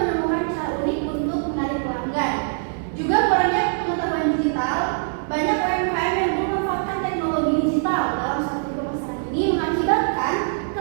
cara unik untuk menarik pelanggan. Juga kurangnya pengetahuan digital, banyak UMKM yang belum memanfaatkan teknologi digital dalam strategi pemasaran ini mengakibatkan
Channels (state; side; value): silent; left; 64 dB below the other